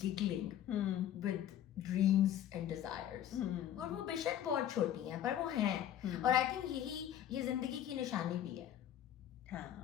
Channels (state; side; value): quieter; right; 11.0 dB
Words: giggling with dreams and desires, اور وہ بے شک بہت چھوٹی ہیں پر وہ ہیں. اور آئی تھنک یہی یہ زندگی کی نشانی بھی ہے.